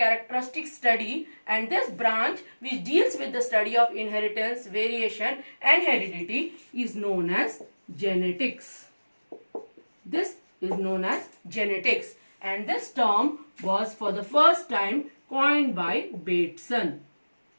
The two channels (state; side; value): inverted; both; correlation -1.00